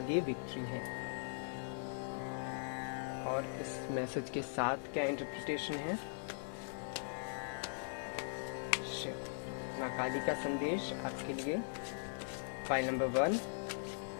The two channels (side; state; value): right; silent; 51 dB below the other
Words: विक्ट्री है। और इस मैसेज के साथ क्या इंटरप्रिटेशन है? शिव, माँ काली का संदेश आपके लिए। फाइल नंबर 1,